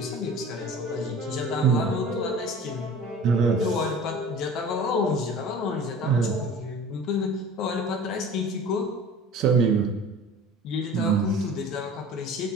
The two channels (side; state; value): both; normal; correlation 0.41